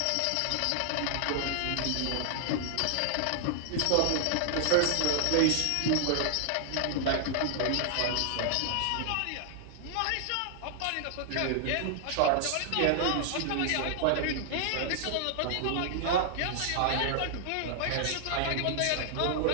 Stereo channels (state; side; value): different; both; correlation 0.00